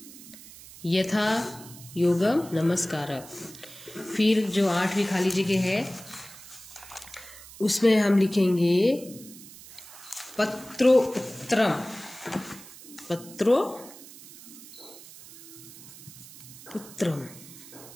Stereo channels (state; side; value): noise; right; hiss, 18 dB below the sound